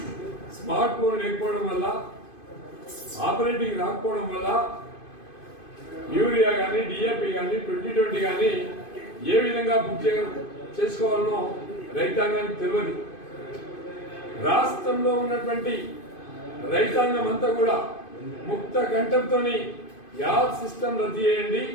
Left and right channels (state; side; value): late; right; 2.5 ms